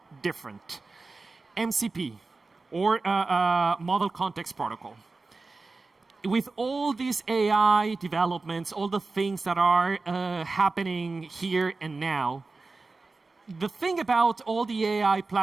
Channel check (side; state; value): left; quieter; 3.7 dB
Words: different. MCP, or Model Context Protocol. With all these AI developments, all the things that are happening here and now, the thing about all the AI